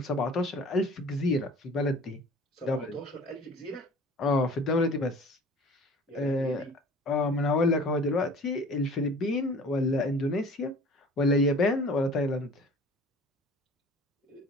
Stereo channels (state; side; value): normal; both; correlation 0.45